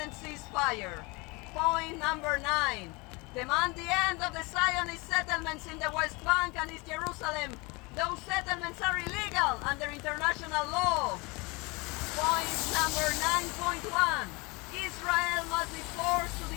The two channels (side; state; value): right; quieter; 26.5 dB